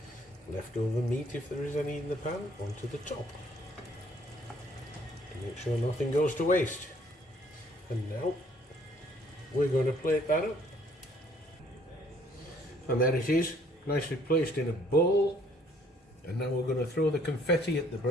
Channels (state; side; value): normal; both; correlation 0.62